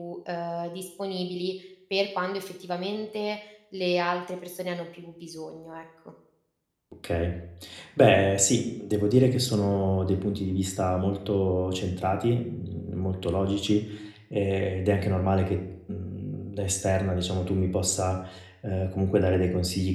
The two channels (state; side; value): identical; both; correlation 1.00